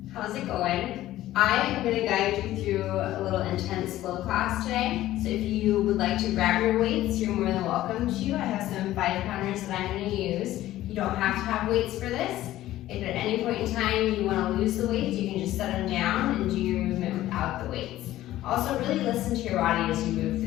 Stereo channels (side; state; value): right; quieter; 14.6 dB